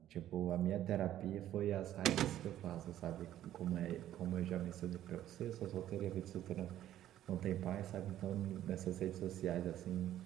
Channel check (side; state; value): left; quieter; 12.3 dB